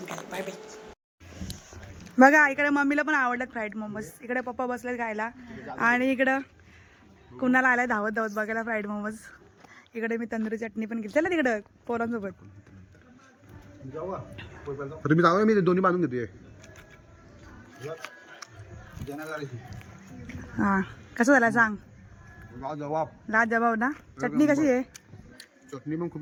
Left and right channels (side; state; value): both; identical; correlation 1.00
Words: काय. Bye bye. बघा इकडे मम्मीला पण आवडतात फ्राईड मोमोज, इकडे पप्पा बसलेत खायला, आणि इकडं कुणाला आलाय धावत धावत बघायला फ्राईड मोमोज. इकडे मी तंदुरी चटणी पण घेतली. चला तिकडं पोरांसोबत. तुम्ही जाऊ, मी दोन्ही बांधून घेतोय. हां, कसं झालं सांग. जबाब लाजवाब ना. चटणी कशी आहे? चटणी पण